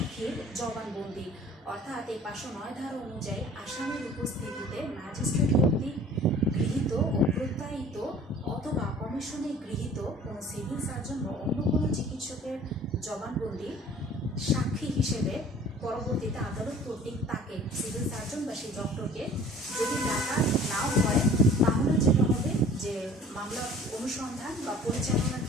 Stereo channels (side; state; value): both; normal; correlation 0.48